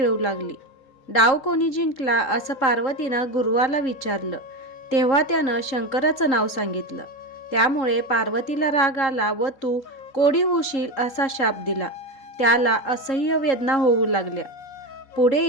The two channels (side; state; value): right; late; 3.7 ms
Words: लागली. डाव कोणी जिंकला असं पार्वतीनं गुरुवाला विचारलं. तेव्हा त्यानं शंकराचं नाव सांगितलं. त्यामुळे पार्वतीला राग आला व तू कोडी होशील असा शाप दिला. त्याला असह्य वेदना होऊ लागल्या. पुढे